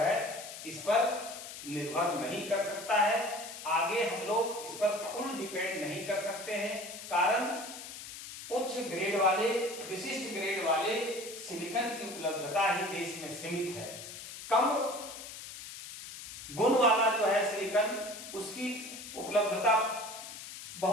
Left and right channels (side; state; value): left; noise; hiss, 11 dB below the sound